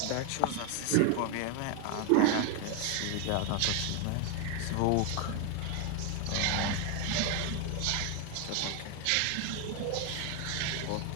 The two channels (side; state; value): both; different; correlation 0.01